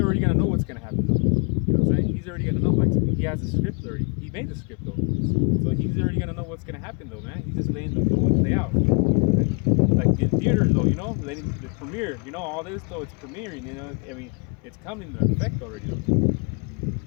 gonna know what's gonna happen, though. You know what I'm saying? He's already gonna know. Like, he has a script already. He made the script, though. So he's already gonna know what's gonna happen, though, man. He's just letting the flow play out. Like in theaters, though, you know, the premiere, you know, all this, though, it's premiering, you know. I mean, it's coming to effect already, though.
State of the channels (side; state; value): right; quieter; 35.9 dB